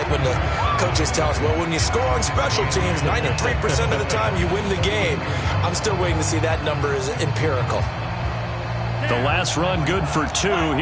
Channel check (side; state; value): both; identical; correlation 1.00